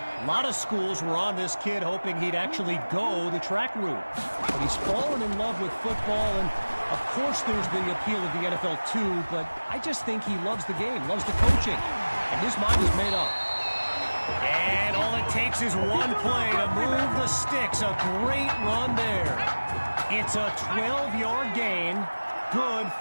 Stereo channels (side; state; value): both; inverted; correlation -1.00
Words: lot of schools were on this kid hoping he'd actually go the track route. But he's fallen in love with football, and of course there's the appeal of the NFL too, but I just think he loves the game, loves the coaching, and his mind is made up. And all it takes is one play to move the sticks. A great run there. It's a 12-yard gain, good